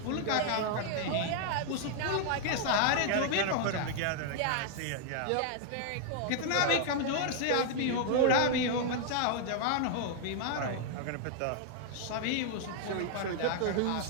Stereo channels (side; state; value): both; different; correlation 0.00